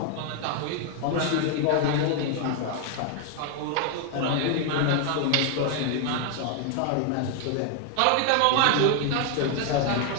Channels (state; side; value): different; both; correlation 0.00